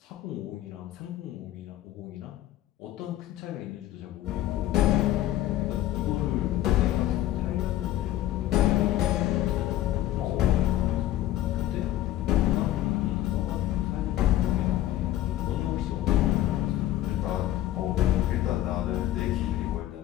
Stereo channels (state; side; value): quieter; right; 13.6 dB